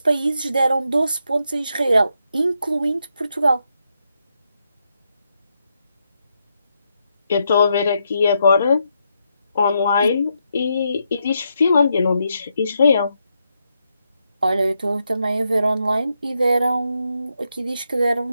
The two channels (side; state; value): both; inverted; correlation -0.81